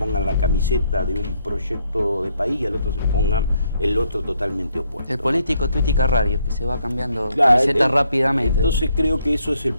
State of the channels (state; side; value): inverted; both; correlation -0.72